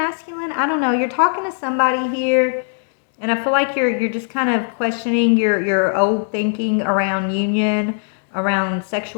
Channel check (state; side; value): silent; right; digital silence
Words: I don't know, you're talking to somebody here, and I feel like you're just kind of questioning your old thinking around union, around